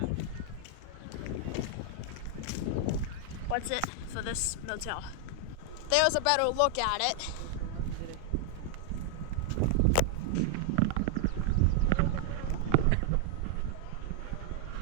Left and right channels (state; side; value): different; both; correlation 0.00